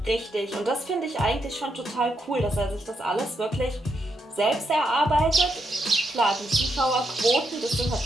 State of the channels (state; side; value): normal; both; correlation 0.80